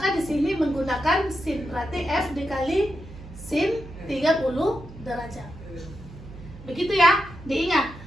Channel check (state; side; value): noise; right; hum, 16 dB below the sound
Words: di sini menggunakan sin, berarti F dikali sin 30 derajat. Begitu ya, diingat.